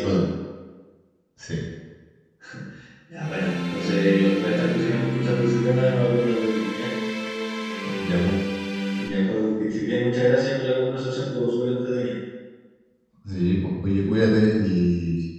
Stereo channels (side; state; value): both; identical; correlation 1.00